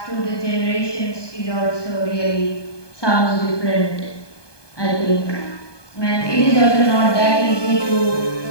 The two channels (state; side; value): late; right; 1.2 ms